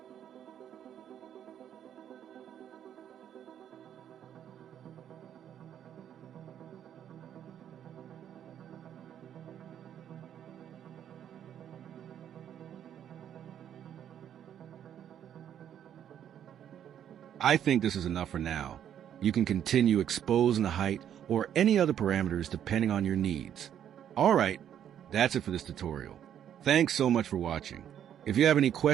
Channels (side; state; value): left; quieter; 9.8 dB